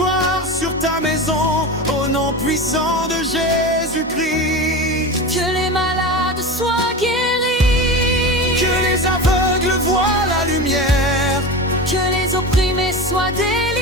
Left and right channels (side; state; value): both; normal; correlation 0.26